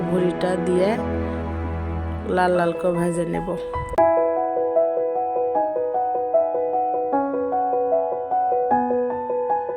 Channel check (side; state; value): both; identical; correlation 1.00